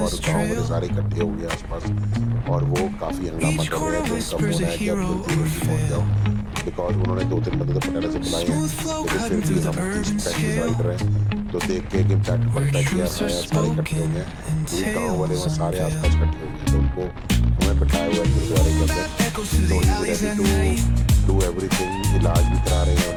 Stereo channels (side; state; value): both; identical; correlation 1.00